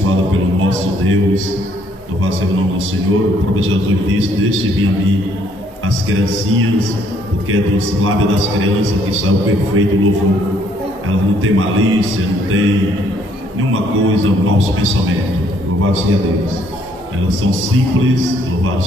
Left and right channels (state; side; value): normal; both; correlation 0.66